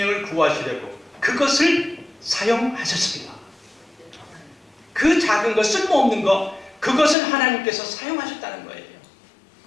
구하시려고 그것을 사용하셨습니다. 그 작은 거, 쓸모없는 거, 그것을 하나님께서 사용하셨다는 거예요.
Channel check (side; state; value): right; drops out; at 7.2 s